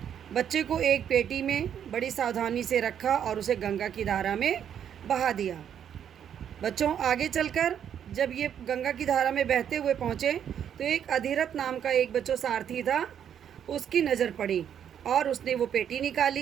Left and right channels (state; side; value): quieter; left; 9.0 dB